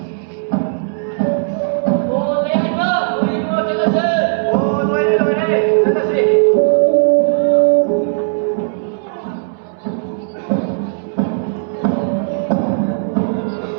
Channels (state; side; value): silent; left; 68 dB below the other